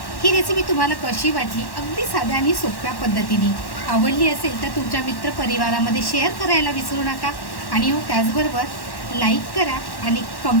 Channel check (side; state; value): right; late; 1.1 ms